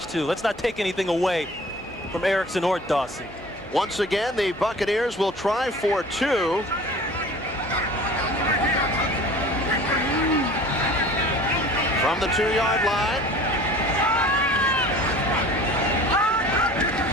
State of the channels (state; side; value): normal; both; correlation 0.44